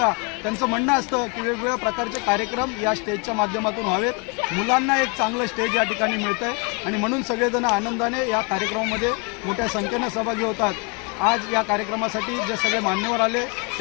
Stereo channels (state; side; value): quieter; right; 33.4 dB